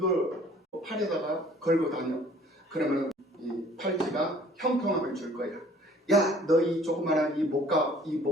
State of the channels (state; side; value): normal; both; correlation 0.54